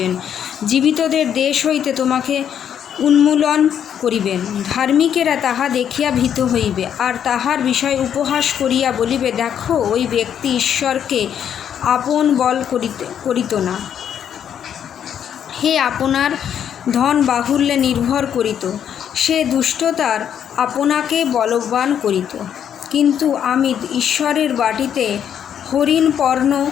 জীবিতদের দেশ হইতে তোমাকে উন্মূলন করিবেন। ধার্মিকেরা তাহা দেখিয়া ভীত হইবে, আর তাহার বিষয় উপহাস করিয়া বলিবে, দেখো, ওই ব্যক্তি ঈশ্বরকে আপন বল করিত না। হে আপনার ধন বাহুল্যে নির্ভর করিত, সে দুষ্টতার আপনাকে বলবান করিত। কিন্তু আমি ঈশ্বরের বাটিতে হরিণ পর্ণ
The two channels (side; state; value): right; quieter; 9.0 dB